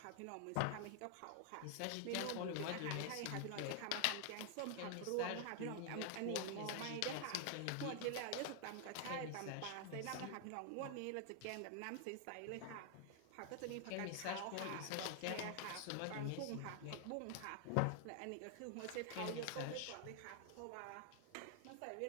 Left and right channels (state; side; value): different; both; correlation 0.00